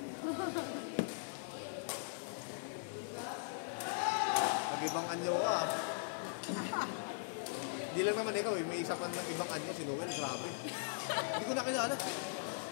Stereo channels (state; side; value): silent; right; 51 dB below the other